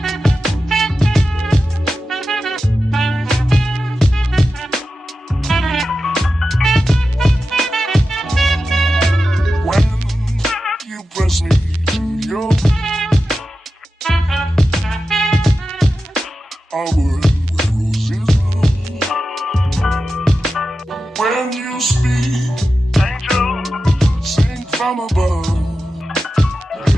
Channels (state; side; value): normal; both; correlation 0.92